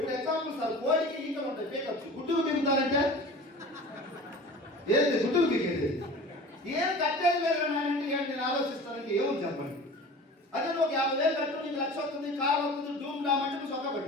ఎగ్జాంపుల్ సార్, కోడికి ఈకలు ఉంటాయి, పీకచ్చు. గుడ్డుకు పీకుతారంటే ఏంటి గుడ్డుకు పీకేది? ఏం కట్టేది లేదు అంటే నేను ఆలోచిస్తానంటే ఏమని చెప్పండి. అదే నువ్వు 50,000 కట్టు, నీకు 1,00,000 వస్తుంది, కారు వస్తుంది, డూమ్ డామంటే నువ్వు సొక్క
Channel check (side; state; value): both; normal; correlation 0.39